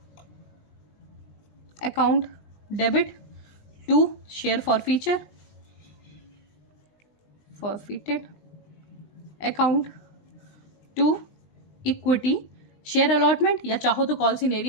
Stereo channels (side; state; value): right; late; 19 ms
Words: account debit to share forfeited account to equity share allotment या चाहो तो कॉल